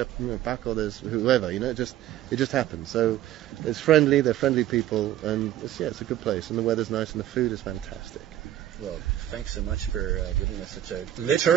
Paco, there's whoever, it just happens. So it's friendly, they're friendly people, and it's a good place, and the weather's nice, and the food is fantastic. Well, thanks so much for giving us such a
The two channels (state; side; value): quieter; left; 12.6 dB